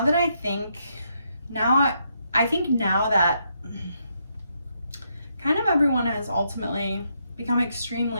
I think that kind of everyone has ultimately become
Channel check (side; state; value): both; inverted; correlation -0.78